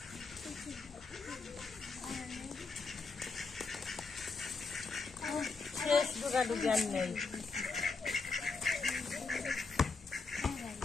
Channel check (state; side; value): quieter; right; 4.4 dB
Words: ফ্রেশ দুগা দুগি আন নেই